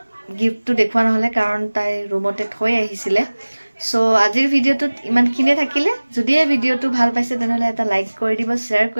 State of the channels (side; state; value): both; inverted; correlation -1.00